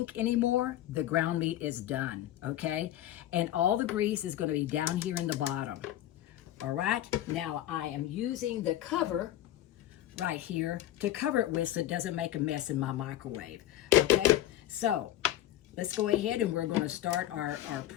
anymore, the ground meat is done, okay? And all the grease is going to be down here in the bottom. All right, now I am using the cover right here to cover it with so it doesn't make a mess in my microwave, okay? So let's go ahead and we're going to start our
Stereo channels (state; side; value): quieter; right; 13.2 dB